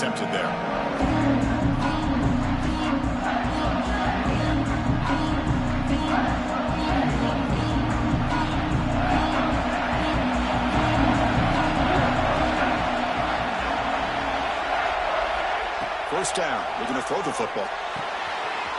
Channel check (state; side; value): identical; both; correlation 1.00